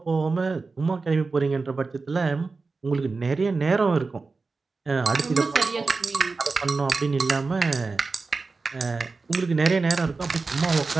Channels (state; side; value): quieter; left; 4.1 dB